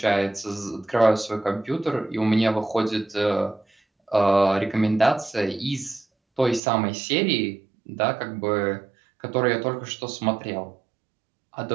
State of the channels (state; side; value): drops out; left; at 6.6 s